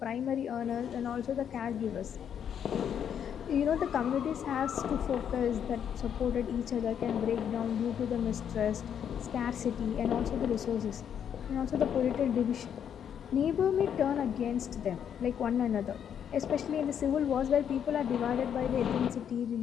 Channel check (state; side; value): quieter; right; 8.6 dB